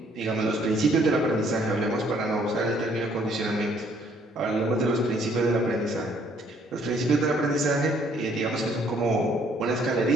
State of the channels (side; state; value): both; normal; correlation 0.64